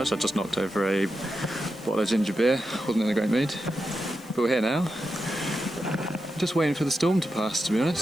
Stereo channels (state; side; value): noise; left; hiss, 24 dB below the sound